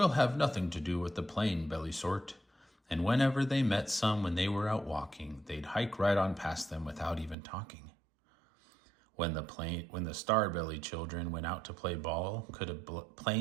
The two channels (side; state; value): left; drops out; at 7.4 s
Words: have nothing to do with the plain-belly sort." And whenever they met some when they were out walking, they'd hike right on past them without even talking. When the star-belly children went out to play ball, could a